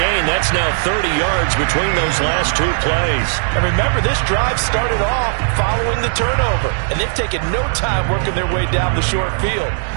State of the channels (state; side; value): silent; left; digital silence